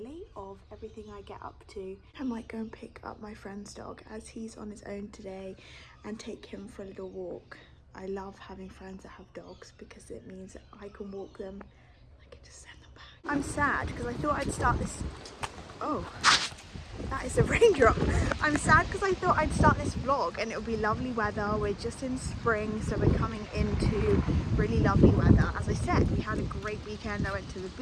of everything I get up to. I might go and pick up my friend's dog as he's on his own today and take him for a little walk. I love having friends that have dogs because it means that I can walk them. I can just send them back. I'm sad because I thought I'd start this. Oh, that is a raindrop. I'm sad because I thought I'd start this vlog and it would be lovely weather. We're just in spring, so we're coming into really lovely weather. As I said, we had a great weekend. I went to the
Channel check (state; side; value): identical; both; correlation 1.00